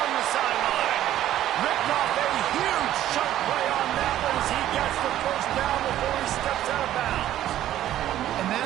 the sideline. Ripped off a huge chunk play on that one as he gets the first down before he steps out of bounds. And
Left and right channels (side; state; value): left; quieter; 12.7 dB